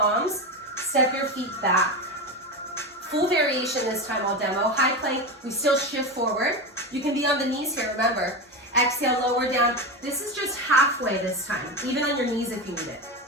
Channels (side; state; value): both; normal; correlation 0.19